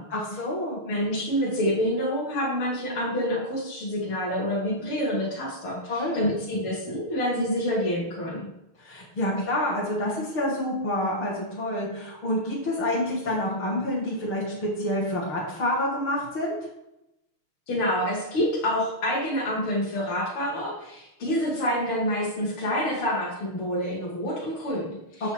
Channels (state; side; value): late; right; 6.4 ms